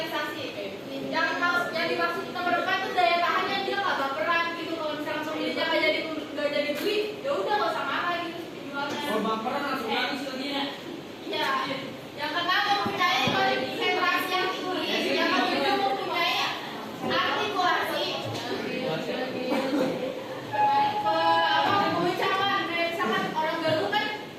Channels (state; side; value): identical; both; correlation 1.00